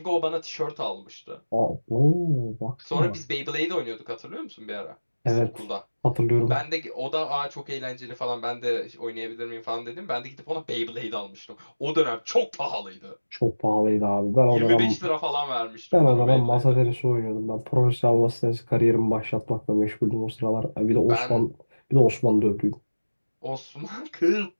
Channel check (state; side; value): inverted; both; correlation -1.00